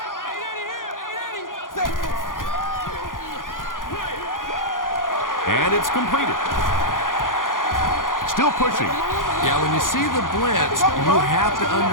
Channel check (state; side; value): late; right; 0.89 ms